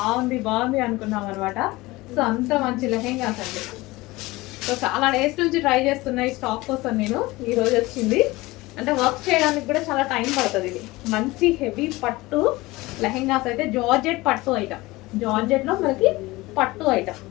బాగుంది అనుకున్నాం అనమాట. సో అంత మంచి లెహెంగాస్ అండి. సో చాలా డేస్ నుంచి ట్రై చేస్తున్నా ఈ స్టాక్ కోసం నేను. ఈరోజు వచ్చింది, అంటే వర్క్ చేయడానికి కూడా చాలా టైం పడుతుంది. ఇది మంచి హెవీ పట్టు లెహెంగాస్ అయితే, జార్జెట్ పట్టు ఐటమ్, జార్జెట్లో మనకి పట్టు ఐటమ్.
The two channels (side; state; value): right; quieter; 20.6 dB